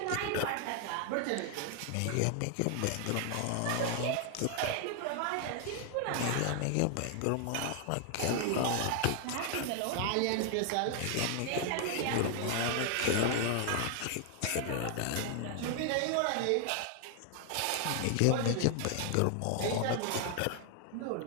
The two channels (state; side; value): different; both; correlation 0.00